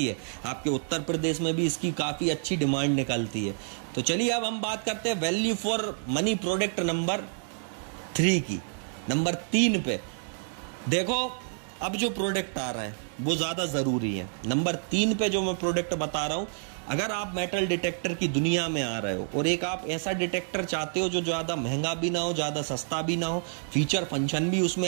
है। आपके उत्तर प्रदेश में भी इसकी काफ़ी अच्छी डिमांड निकलती है। तो चलिए अब हम बात करते हैं value for money product number 3 की। नंबर 3 पे देखो, अब जो प्रोडक्ट आ रहा है वो ज़्यादा ज़रूरी है। नंबर 3 पे जो मैं प्रोडक्ट बता रहा हूँ, अगर आप मेटल डिटेक्टर की दुनिया में आ रहे हो और एक आप ऐसा डिटेक्टर चाहते हो जो ज़्यादा महंगा भी ना हो, ज़्यादा सस्ता भी ना हो, फीचर फंक्शन भी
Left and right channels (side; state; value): left; silent; digital silence